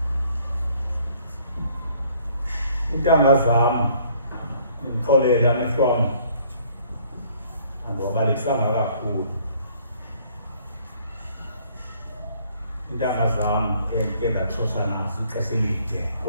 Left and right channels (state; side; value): inverted; both; correlation -0.60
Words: intanga zam ndixolela nihlwam andiwabalekisanga kakhulu intanga zam endike ndatshosha nazo ixesha elide